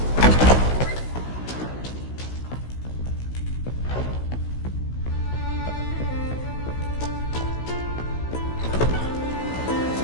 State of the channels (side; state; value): right; late; 16 ms